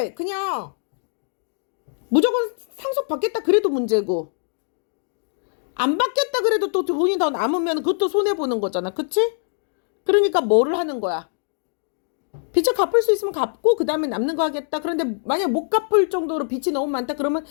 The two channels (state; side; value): silent; right; digital silence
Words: 그냥 무조건 상속받겠다 그래도 문제고 안 받겠다 그래도 또 돈이 더 남으면 그것도 손해보는 거잖아. 그치? 그러니까 뭐를 하는 거야? 빚을 갚을 수 있으면 갚고 그 다음에 남는 거 하겠다. 그런데 만약 못 갚을 정도로 빚이 너무 많다 그러면